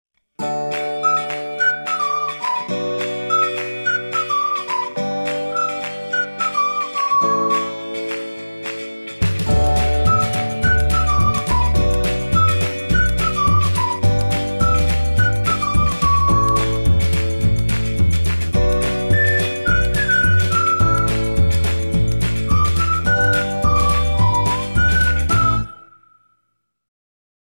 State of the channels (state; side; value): inverted; both; correlation -1.00